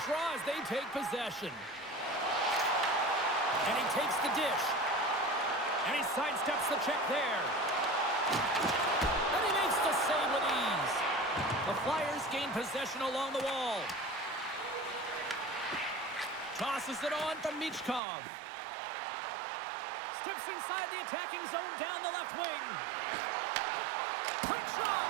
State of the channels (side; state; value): left; drops out; at 18.0 s